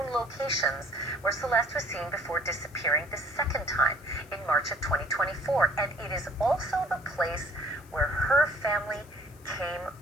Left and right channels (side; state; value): left; noise; hiss, 26 dB below the sound